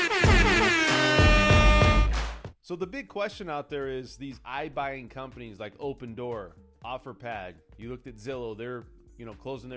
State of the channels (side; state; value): both; identical; correlation 1.00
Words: So the big question out there is these iBuying companies like Opendoor, OfferPad. You looked at Zillow, they're closing